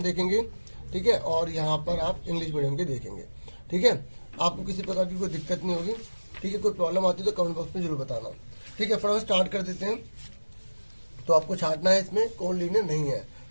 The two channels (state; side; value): inverted; both; correlation -1.00